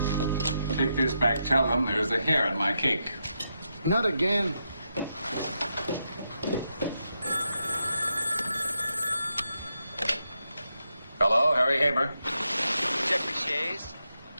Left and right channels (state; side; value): inverted; both; correlation -0.84